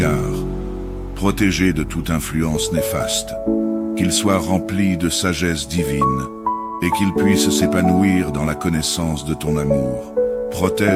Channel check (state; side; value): identical; both; correlation 1.00